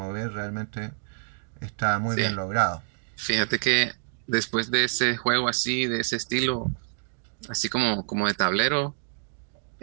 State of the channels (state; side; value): silent; left; digital silence